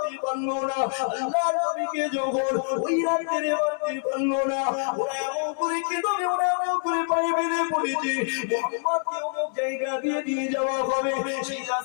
পারলো না, আল্লাহর নবীকে যখন ওই রাতে মারতে পারলো না, ওরা এমন করে কেঁদে, ওরা এমন করে পায়ে বেঁধে পড়েছে মুহাম্মদকে অমুক জায়গা দিয়ে নিয়ে যাওয়া হবে। সেই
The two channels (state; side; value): silent; right; 61 dB below the other